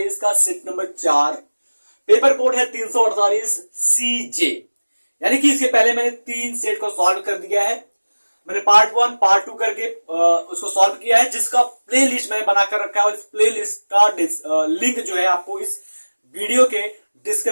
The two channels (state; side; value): inverted; both; correlation -1.00